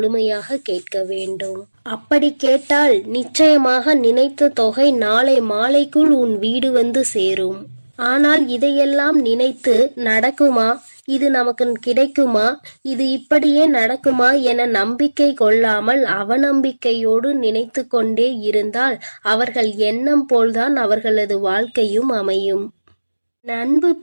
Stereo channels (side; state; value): both; inverted; correlation -1.00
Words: கேட்க வேண்டும். அப்படி கேட்டால் நிச்சயமாக நினைத்த தொகை நாளை மாலைக்குள் உன் வீடு வந்து சேரும். ஆனால் இதையெல்லாம் நினைத்து நடக்குமா, இது நமக்கு கிடைக்குமா, இது இப்படியே நடக்குமா என நம்பிக்கை கொள்ளாமல் அவநம்பிக்கையோடு நினைத்து கொண்டே இருந்தால் அவர்கள் எண்ணம் போல்தான் அவர்களது வாழ்க்கையும் அமையும். அன்பு